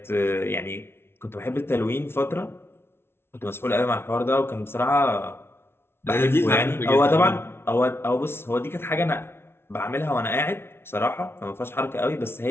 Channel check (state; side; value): late; right; 0.12 ms